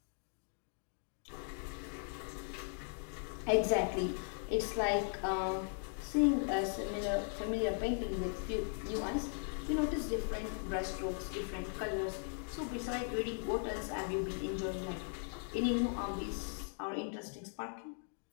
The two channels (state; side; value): silent; right; 52 dB below the other